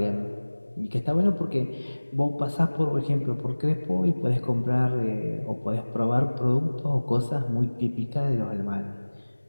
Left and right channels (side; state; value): both; inverted; correlation -1.00